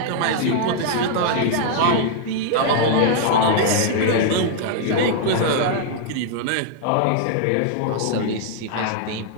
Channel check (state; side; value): different; both; correlation 0.00